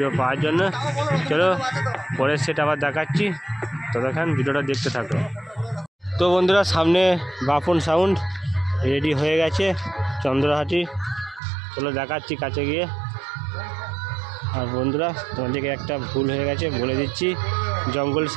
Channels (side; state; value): left; drops out; at 11.4 s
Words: পাওয়ার জন্য। চলো পরের সেট আবার দেখাচ্ছি, ততক্ষণ ভিডিওটা দেখতে থাকো। তো বন্ধুরা, সামনে বাপন সাউন্ড রেডি হয়ে গেছে চন্দ্রহাটি। চলো দেখাচ্ছি কাছে গিয়ে। আর বন্ধুরা, তোমাদেরকে একটা ভুল হয়ে গেছে বলে দিচ্ছি, জঙ্গল